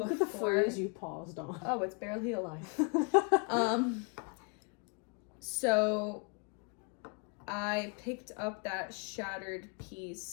Look at the phrase you paused on. Oh, it's barely alive. So I picked up that shattered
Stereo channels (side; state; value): right; quieter; 34.9 dB